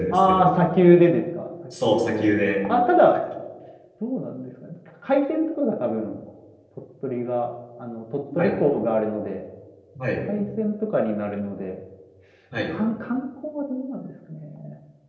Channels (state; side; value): identical; both; correlation 1.00